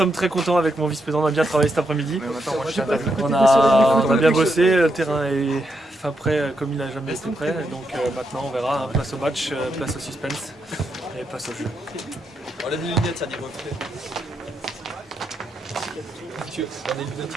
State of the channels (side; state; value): both; normal; correlation 0.81